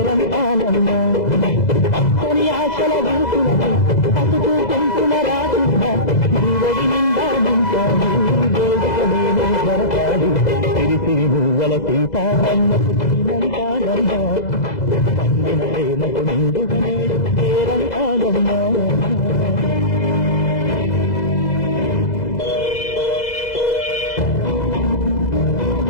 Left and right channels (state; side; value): late; right; 2.0 ms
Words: అక్కని ఆశల వీసులకి పసుపు పెంపుల రాకుండా నీవడి నిండా నింపాలి వేదిక నేను జరపాలి సిరిసిరి మూవల సీతారమ్మకు శ్రీమంతారమ్మ పండిన ప్రేమకు నిండు నేడు పేరంతారమ్మ